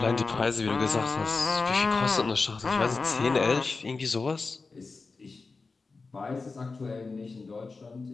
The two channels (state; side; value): quieter; right; 4.1 dB